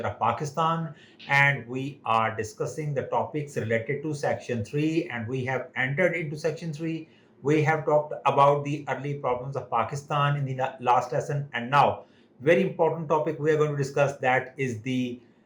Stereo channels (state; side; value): identical; both; correlation 1.00